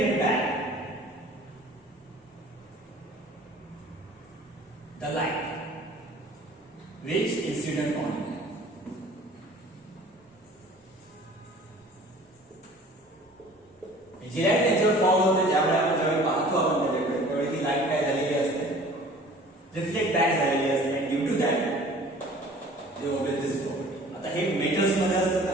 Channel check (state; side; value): normal; both; correlation 0.48